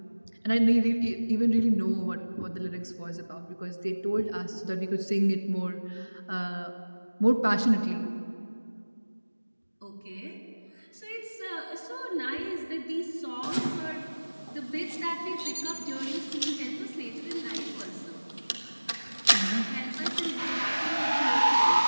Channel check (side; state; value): both; inverted; correlation -1.00